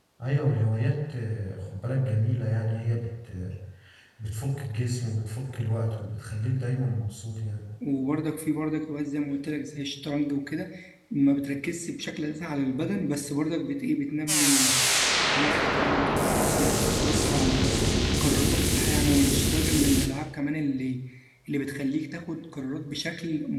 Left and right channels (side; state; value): both; identical; correlation 1.00